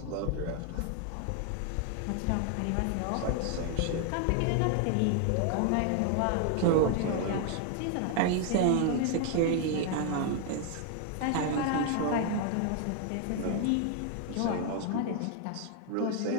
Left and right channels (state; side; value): different; both; correlation 0.01